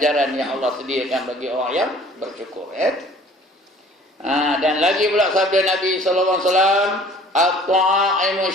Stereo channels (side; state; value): both; normal; correlation 0.51